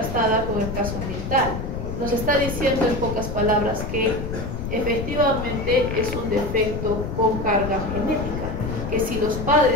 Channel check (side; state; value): left; noise; rumble, 5 dB below the sound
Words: con el caso ambiental. Nos está diciendo en pocas palabras que efectivamente es un defecto con carga genética, que si los